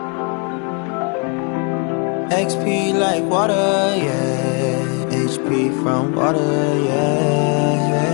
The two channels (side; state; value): right; quieter; 36.5 dB